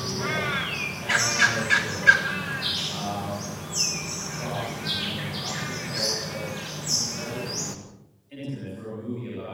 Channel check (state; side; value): identical; both; correlation 1.00